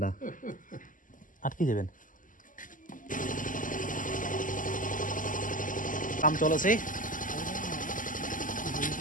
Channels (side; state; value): right; late; 0.38 ms